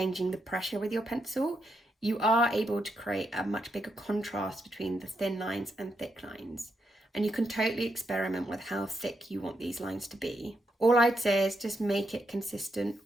the pressure with your pencil, you are able to create a much bigger contrast between the thin lines and thick lines. And you can totally experiment with how thick you want these lines to be. All I'd say is just make it consistent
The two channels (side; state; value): both; normal; correlation 0.81